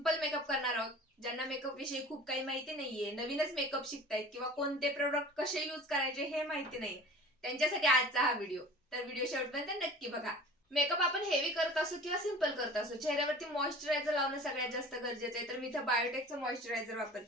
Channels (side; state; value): both; normal; correlation 0.42